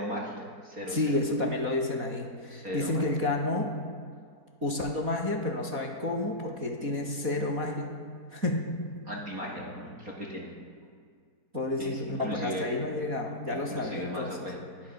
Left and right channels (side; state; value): left; late; 4.1 ms